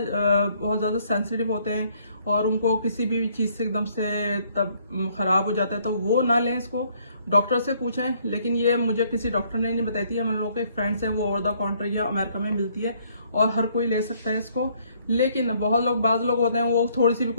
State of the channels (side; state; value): both; inverted; correlation -0.66